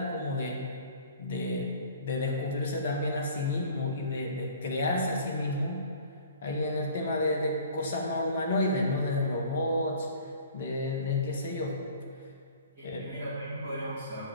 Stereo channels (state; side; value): inverted; both; correlation -0.48